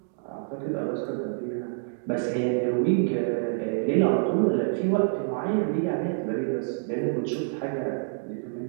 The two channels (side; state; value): left; silent; digital silence